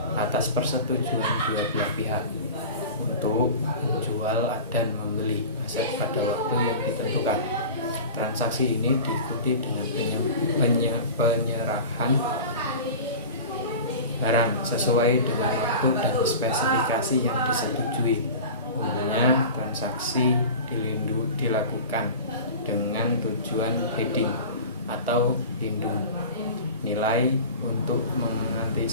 atas persetujuan dua belah pihak untuk menjual dan membeli aset pada waktu yang ditentukan. Transaksi ini diikuti dengan penyerahan barang sesuai dengan waktu dan spesifikasi yang disetujui. Umumnya transaksi dilakukan dengan tujuan hedging atau lindung nilai untuk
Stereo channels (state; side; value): inverted; both; correlation -0.35